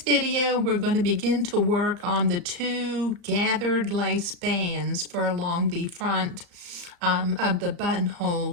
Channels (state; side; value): late; left; 35 ms